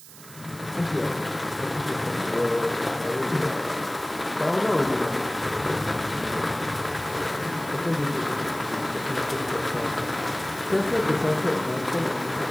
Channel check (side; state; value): right; noise; hiss, 18 dB below the sound